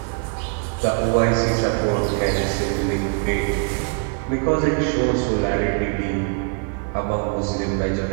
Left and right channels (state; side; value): quieter; left; 38.4 dB